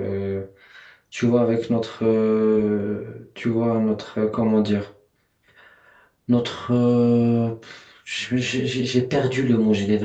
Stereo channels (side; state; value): both; identical; correlation 1.00